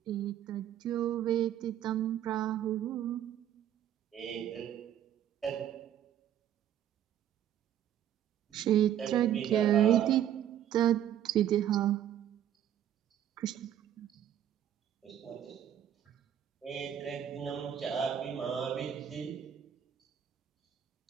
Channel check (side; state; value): left; quieter; 10.5 dB